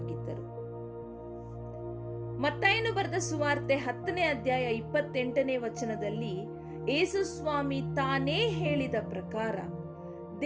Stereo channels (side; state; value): both; identical; correlation 1.00